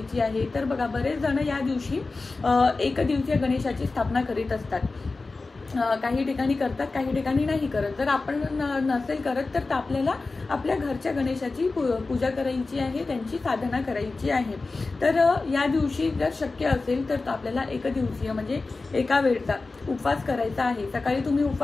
आहे तर बघा, बरेच जण या दिवशी एकदिवसीय गणेशाची स्थापना करीत असतात. काही ठिकाणी करतात, काही ठिकाणी नाही करत. जर आपण नसेल करत तर आपल्याला आपल्या घरच्या गणेशाची पूजा करायची आहे, त्यांची साधना करायची आहे. तर या दिवशी जर शक्य असेल तर आपल्याला एकदिवसीय म्हणजे एका वेळचा उपवास करायचा आहे. सकाळी तुम्ही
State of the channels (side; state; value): right; quieter; 3.7 dB